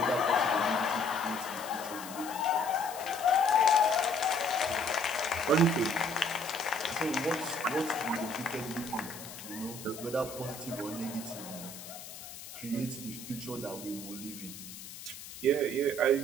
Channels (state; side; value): noise; left; hiss, 13 dB below the sound